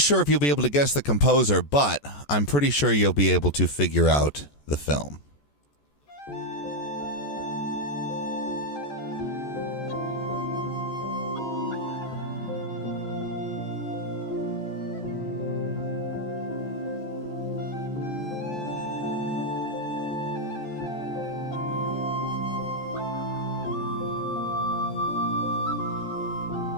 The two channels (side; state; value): right; late; 14 ms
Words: if you'll be able to guess the composer, but I'm pretty sure you'll be able to figure out the film.